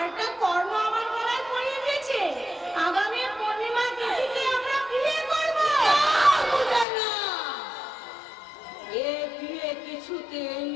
কর্ণ আমার গলায় পরিয়ে দিয়েছে। আগামী পূর্ণিমা তিথিতে আমরা বিয়ে করব। এ বিয়ে কিছুতেই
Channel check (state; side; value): drops out; right; at 6.9 s